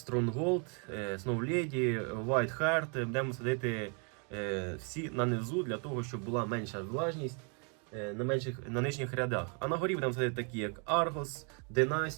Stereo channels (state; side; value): quieter; left; 37.6 dB